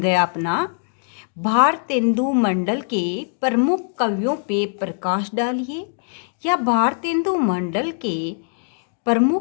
अपना, भारतेंदु मंडल के प्रमुख कवियों पे प्रकाश डालिए, या भारतेंदु मंडल के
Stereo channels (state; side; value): silent; right; 62 dB below the other